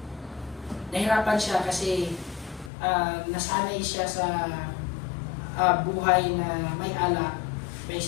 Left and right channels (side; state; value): right; drops out; at 2.7 s